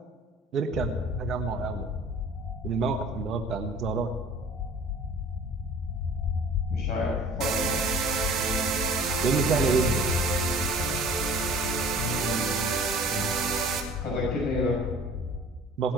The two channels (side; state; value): both; normal; correlation 0.47